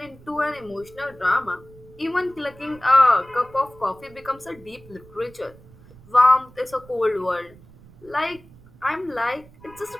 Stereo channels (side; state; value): right; noise; rumble, 23 dB below the sound